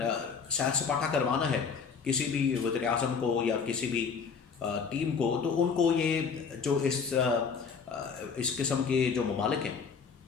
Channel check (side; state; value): right; quieter; 5.8 dB